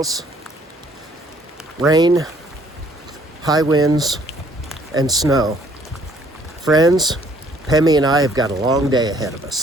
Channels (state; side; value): normal; both; correlation 0.62